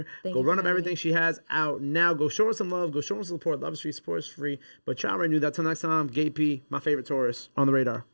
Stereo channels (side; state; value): both; inverted; correlation -1.00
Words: Thank Go you run for up having everything me. she has out now. Go show her some love. Go show her some support. Love is free. Support is free. But y'all already knew that. Till next time, Gay P, my favorite Taurus, on the radar.